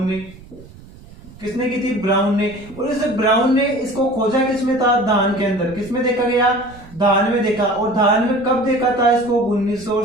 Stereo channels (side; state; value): right; noise; rumble, 20 dB below the sound